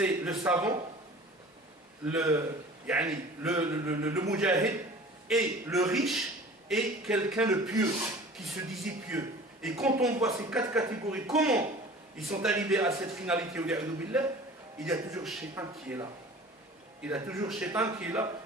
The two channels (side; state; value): both; normal; correlation 0.43